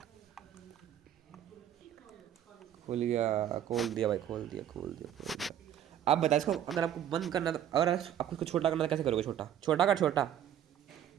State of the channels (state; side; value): quieter; left; 10.4 dB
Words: खोल गया, खोल दिया भाई, खोल दिया खोल दिया खोल दिया। आप बता इसको, अगर आपको बंद करना तो, अगर आपको इसको छोटा करना तो कैसे करोगे? छोटा छोटा कर छोटा।